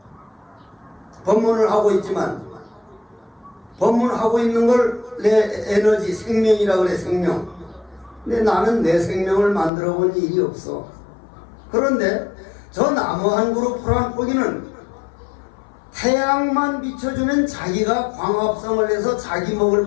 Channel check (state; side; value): drops out; right; at 9.7 s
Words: 법문을 하고 있지만 법문하고 있는 걸 내 에너지, 생명이라 그래, 생명. 근데 나는 내 생명을 만들어 본 일이 없어. 그런데 저 나무 한 그루 풀 한 포기는 태양만 비춰주면 자기가 광합성을 해서 자기 먹을